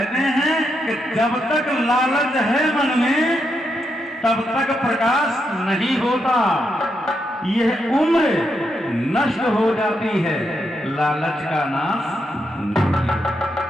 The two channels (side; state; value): both; normal; correlation 0.82